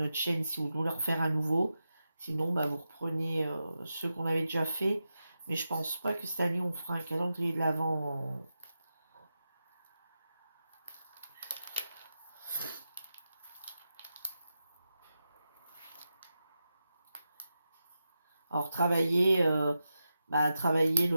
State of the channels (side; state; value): both; inverted; correlation -0.89